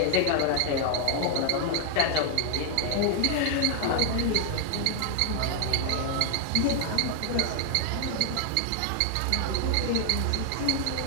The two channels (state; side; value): different; both; correlation 0.00